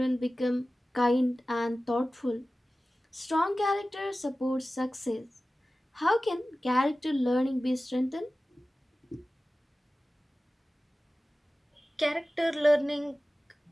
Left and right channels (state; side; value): normal; both; correlation 0.96